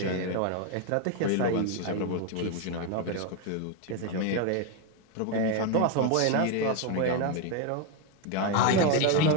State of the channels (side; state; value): both; different; correlation 0.02